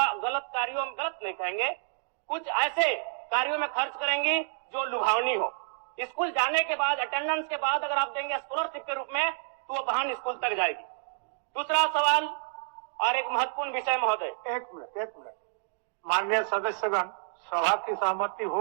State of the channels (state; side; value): silent; left; digital silence